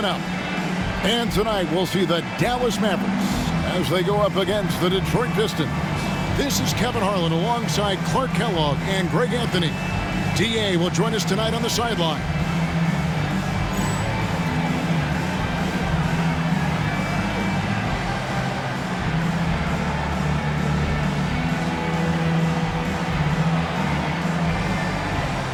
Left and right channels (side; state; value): both; identical; correlation 1.00